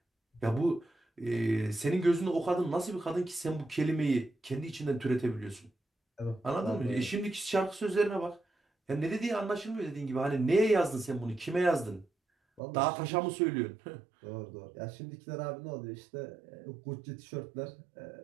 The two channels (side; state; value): left; drops out; at 12.6 s